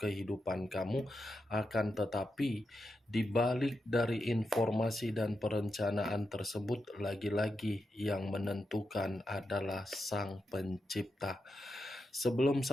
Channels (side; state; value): both; normal; correlation 0.87